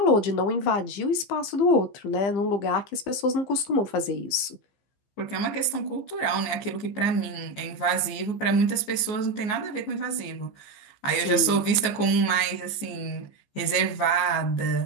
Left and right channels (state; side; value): late; right; 14 ms